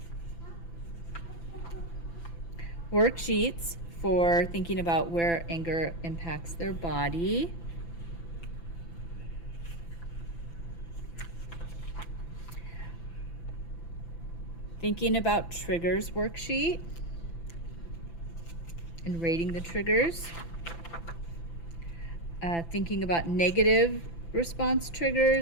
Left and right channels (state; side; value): late; right; 5.9 ms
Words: worksheets for thinking about where anger impacts their body, thinking about triggers worksheet and rating the triggers, thinking about negative response